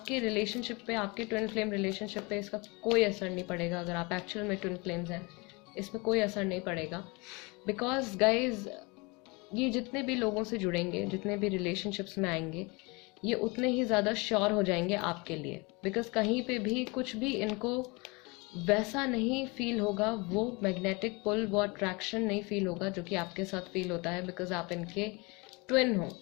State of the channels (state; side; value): quieter; right; 27.5 dB